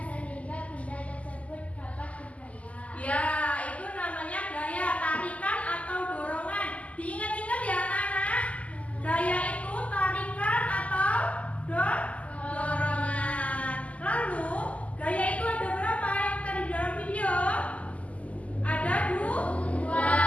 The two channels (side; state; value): right; late; 0.069 ms